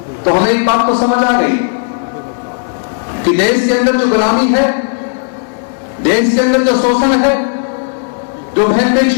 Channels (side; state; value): right; silent; digital silence